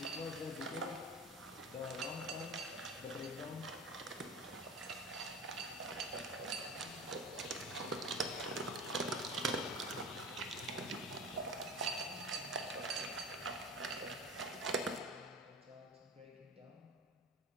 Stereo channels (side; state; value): both; normal; correlation 0.31